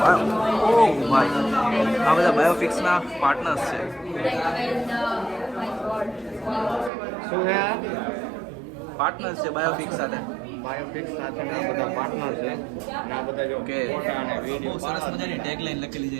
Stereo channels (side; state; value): left; drops out; at 6.9 s